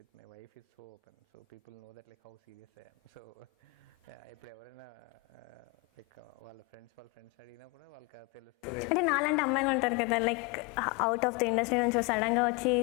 with my wife is so open, so people know that like how serious I am. So ఇప్పుడు ఎవరైనా లైక్ వాళ్ళ ఫ్రెండ్స్ అడిగినా కూడా వాళ్ళకి తెలుస్తుంది. అంటే నాలాంటి అమ్మాయిలు ఉంటారు కదా like out of the industry నుంచి సడన్గా వచ్చి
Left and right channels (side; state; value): right; quieter; 23.3 dB